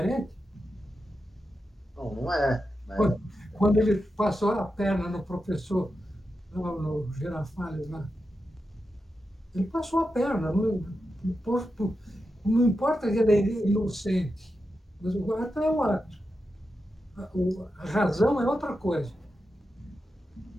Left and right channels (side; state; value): both; normal; correlation 0.89